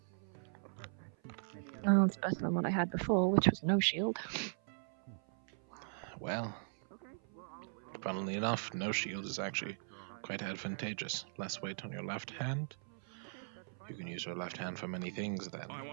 Oh, it's better than what I had before, which was no shield. Well, funnily enough, no shield is actually quite advantageous. Less weight on your left hand. You can use your left hand for many things then.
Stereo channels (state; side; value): silent; left; 52 dB below the other